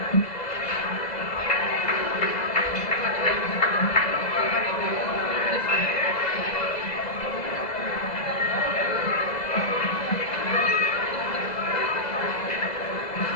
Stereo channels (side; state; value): right; late; 2.0 ms